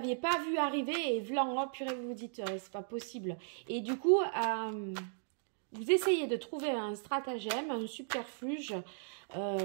pas vu arriver. Et vlan, oh purée, vous vous dites, c'est pas possible. Et du coup, vous essayez de trouver un stratagème, un subterfuge,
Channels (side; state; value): left; silent; digital silence